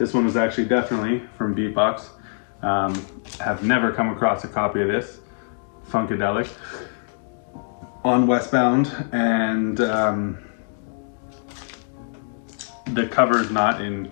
one was actually definitely from Beatbox. Have never come across a copy of this. Funkadelic on Westbound, and the cover is not in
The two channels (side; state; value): right; silent; digital silence